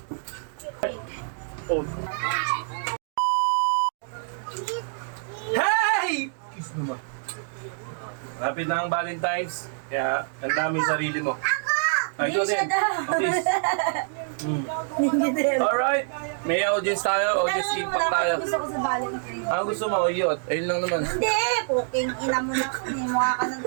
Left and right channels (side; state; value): left; silent; digital silence